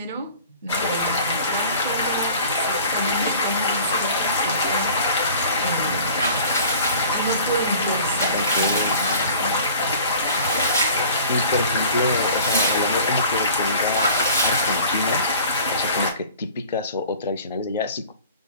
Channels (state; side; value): inverted; both; correlation -0.46